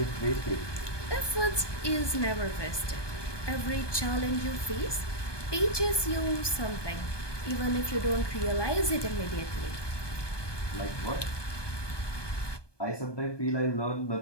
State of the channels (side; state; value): right; late; 1.2 ms